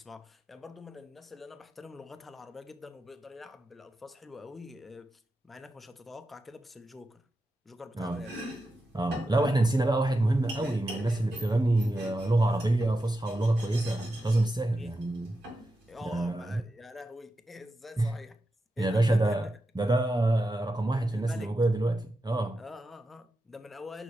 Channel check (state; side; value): normal; both; correlation 0.89